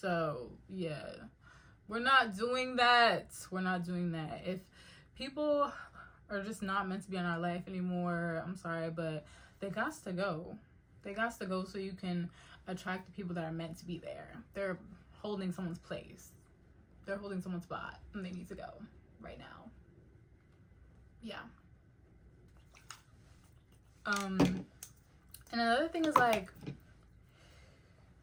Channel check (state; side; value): identical; both; correlation 1.00